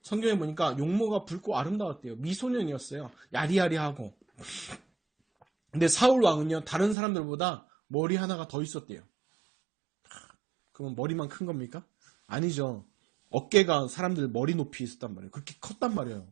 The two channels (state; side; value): drops out; left; at 7.0 s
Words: 성경에 보니까 용모가 붉고 아름다웠대요. 미소년이었어요. 야리야리하고. 근데 사울 왕은요, 다른 사람들보다 머리 하나가 더 있었대요. 그러면 머리만 큰 겁니까? 아니죠. 어깨가 사람들 머리 높이 있었단 말이에요. 그렇게 컸단